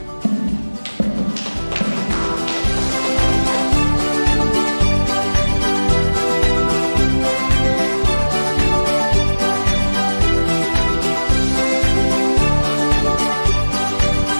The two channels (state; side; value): inverted; both; correlation -1.00